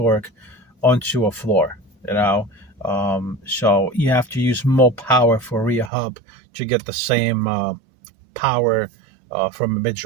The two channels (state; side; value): drops out; left; at 5.9 s